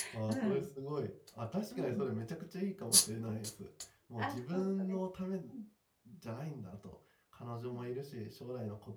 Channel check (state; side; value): identical; both; correlation 1.00